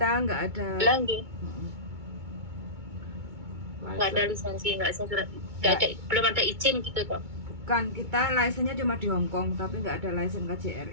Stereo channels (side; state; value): left; late; 2.2 ms